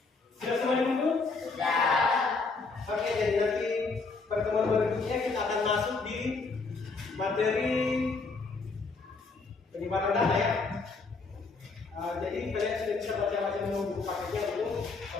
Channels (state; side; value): quieter; right; 4.1 dB